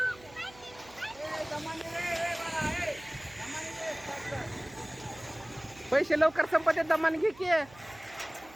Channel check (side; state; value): right; noise; hum, 22 dB below the sound